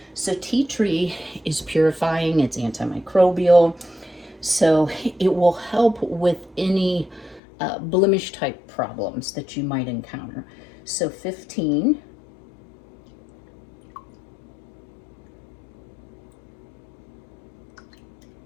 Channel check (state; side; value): drops out; right; at 7.4 s